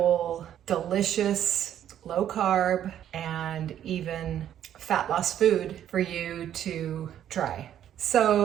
delicious, low carb, and even fat loss food for you to try.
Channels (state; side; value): quieter; left; 10.6 dB